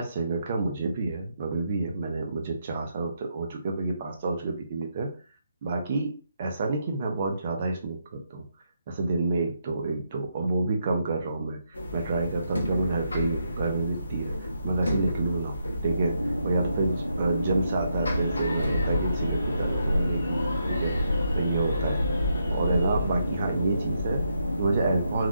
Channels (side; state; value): both; inverted; correlation -0.80